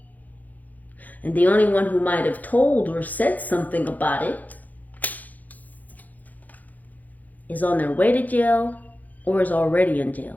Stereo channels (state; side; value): late; right; 0.081 ms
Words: And the only one who might have told or said something about it is on their way to jail or is already in